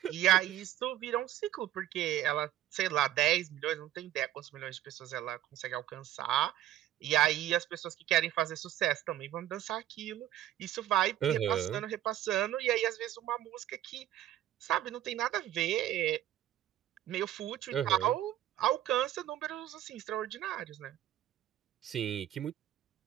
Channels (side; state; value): left; quieter; 12.6 dB